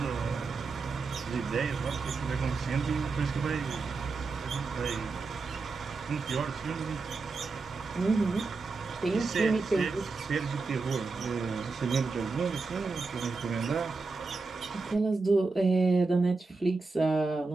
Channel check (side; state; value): left; quieter; 4.0 dB